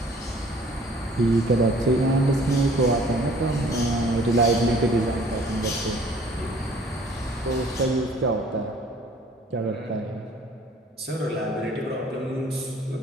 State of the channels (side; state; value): both; normal; correlation 0.54